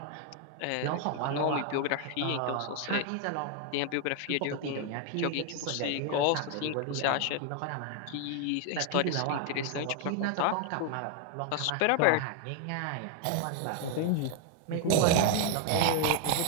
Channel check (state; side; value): different; both; correlation 0.01